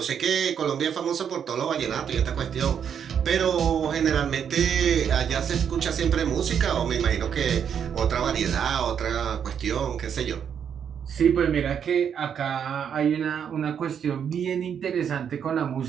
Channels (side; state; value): left; quieter; 8.0 dB